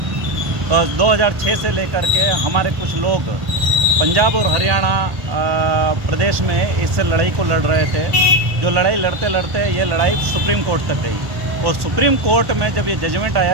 2006 से लेकर के हमारे कुछ लोग पंजाब और हरियाणा प्रदेश में इस लड़ाई को लड़ रहे थे। जो लड़ाई लड़ते लड़ते ये लड़ाई सुप्रीम कोर्ट तक गई और सुप्रीम कोर्ट में जब ये जजमेंट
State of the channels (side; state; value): left; late; 1.1 ms